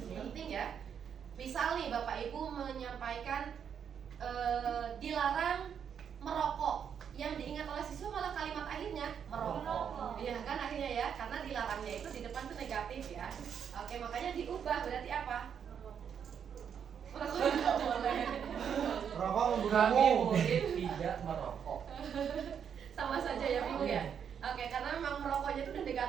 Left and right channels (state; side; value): quieter; left; 7.8 dB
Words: ya. Misal nih Bapak Ibu menyampaikan dilarang merokok, yang diingat oleh siswa malah kalimat akhirnya merokok. Iya kan akhirnya ya, karena dilarangnya itu di depan tuh negatif ya. Oke, makanya diubah berarti apa? Merokok tidak boleh. Rokok Kami membunuhmu. murid tidak merokok. Sama saja ya Ibu ya. Oke, karena memang merokoknya itu udah